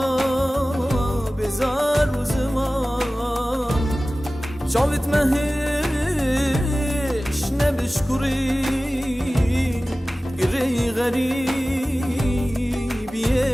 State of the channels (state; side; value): normal; both; correlation 0.97